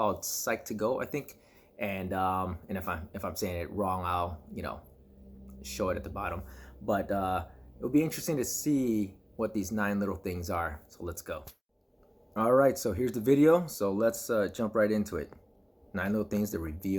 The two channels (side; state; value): both; identical; correlation 1.00